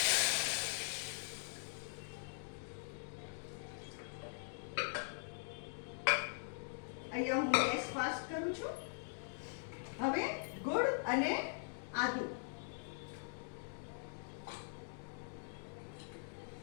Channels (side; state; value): right; silent; digital silence